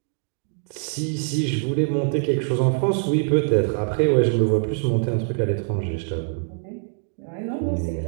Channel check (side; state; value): left; silent; 58 dB below the other